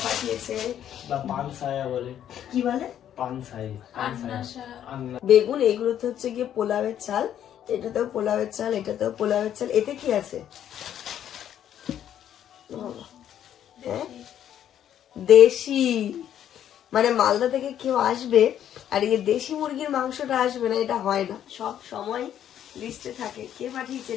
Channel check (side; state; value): right; quieter; 10.4 dB